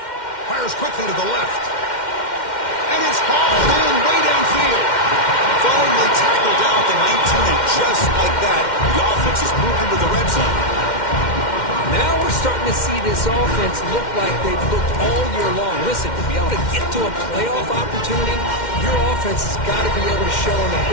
Fires quickly to the left. And it's hauled in way downfield. Finally tackled down at the 19, and just like that, the offense is moved into the red zone. Now we're starting to see this offense look like they've looked all year long. Listen, to be able to get to a playoff opportunity, your offense has got to be able to show an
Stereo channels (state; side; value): late; right; 2.1 ms